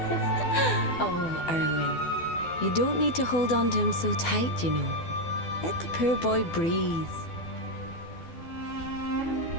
Oh, Erwin. You don't need to hold on to him so tight, you know. Let the poor boy breathe.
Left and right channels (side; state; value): right; late; 12 ms